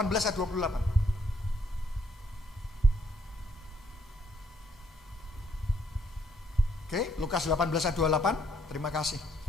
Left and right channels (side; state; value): both; normal; correlation 0.69